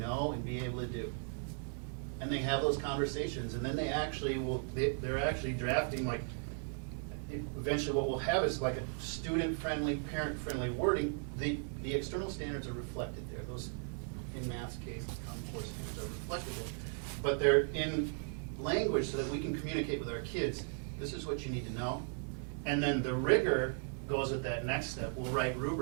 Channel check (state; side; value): silent; left; 53 dB below the other